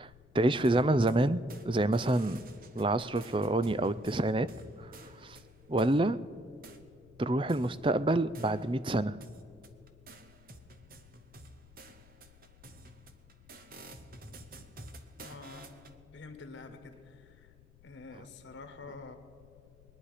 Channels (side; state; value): left; noise; rumble, 26 dB below the sound